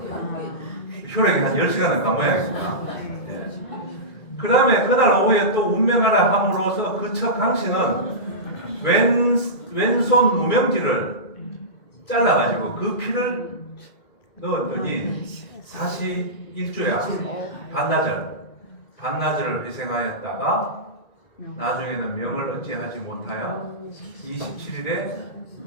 효력이 한 10시간은 가모양이니까. 그 다음에 그날 오후에 또 운명하라 함으로써 그 첫 강씨는 왼손 무명지를 잘라가지고 그 피를 넣었더니 사시 일주야 반나절을 회생하였다가 나중에는 명을 어찌하지 못하여 27일에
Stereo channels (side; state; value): right; late; 2.1 ms